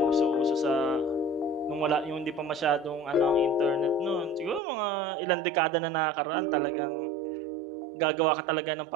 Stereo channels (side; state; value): left; drops out; at 4.6 s